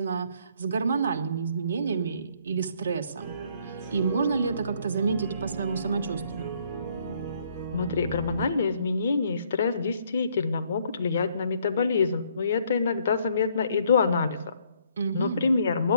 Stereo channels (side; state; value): both; inverted; correlation -0.66